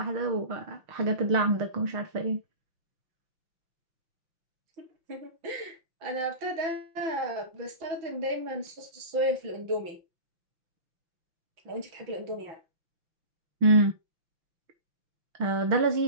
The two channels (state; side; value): late; left; 5.8 ms